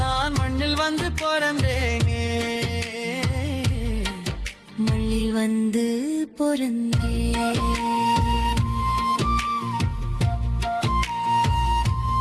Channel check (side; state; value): both; identical; correlation 1.00